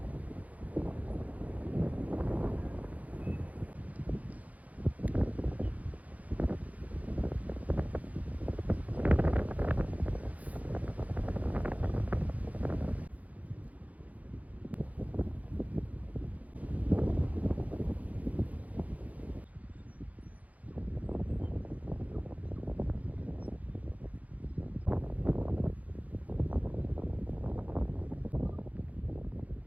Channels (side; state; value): left; late; 0.072 ms